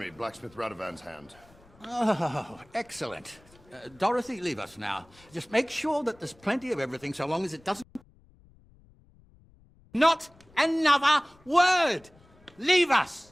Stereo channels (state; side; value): noise; left; rumble, 28 dB below the sound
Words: Blacksmith Radovan's hand. Oh, excellent. Dorothy, leave us now. Just make sure that there's plenty of everything so long as it doesn't... Not another word! Leave